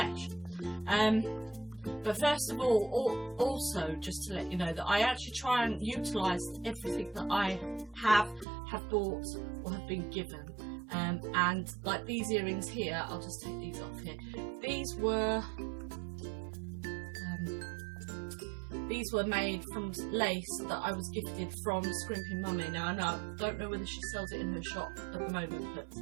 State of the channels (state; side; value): drops out; left; at 8.5 s